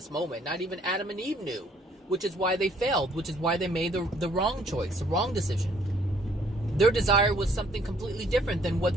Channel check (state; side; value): normal; both; correlation 0.63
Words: moment, not even Adam and Eve knew. Which is why they failed. Which is why they made the wrong choice, the wrong decision. Their desire was something completely different than